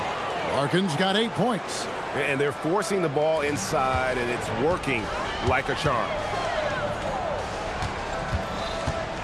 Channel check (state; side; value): identical; both; correlation 1.00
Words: Larkin's got 8 points. And they're forcing the ball inside, and it's working like a charm.